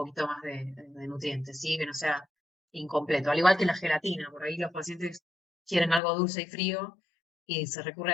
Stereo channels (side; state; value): right; drops out; at 6.0 s